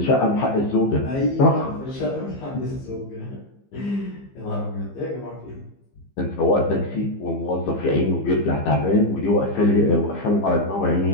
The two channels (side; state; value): right; late; 15 ms